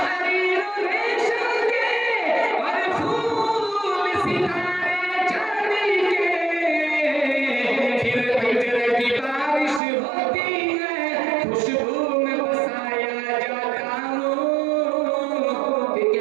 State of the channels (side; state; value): left; drops out; at 9.8 s